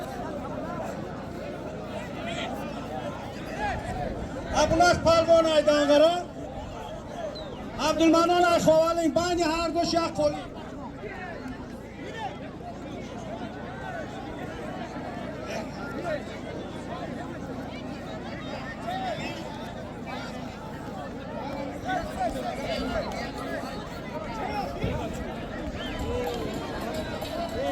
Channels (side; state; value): both; identical; correlation 1.00